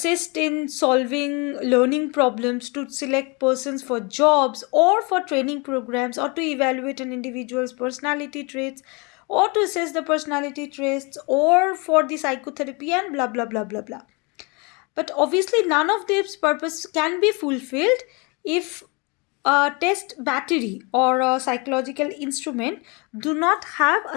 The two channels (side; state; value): right; quieter; 29.7 dB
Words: in solving learning problems, to select persons for jobs or for training programs, or to evaluate an individual's personality traits, or to assess the personality traits, or for the psychotherapy, and blah blah blah blah blah. But obviously, none of these purposes can be fulfilled if a test battery or a psychological instrument do not have a